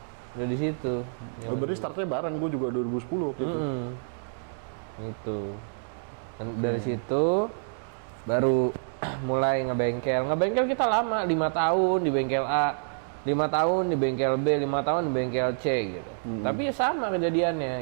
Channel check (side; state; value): left; silent; digital silence